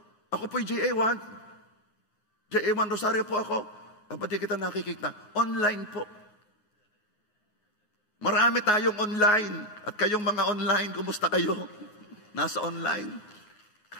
ako po'y JA1. JA1 Rosario po ako. Pati kita nakikita. Online po. Marami tayong online. At kayong mga online, kumusta kayo? Nasa online.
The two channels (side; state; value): right; late; 9.5 ms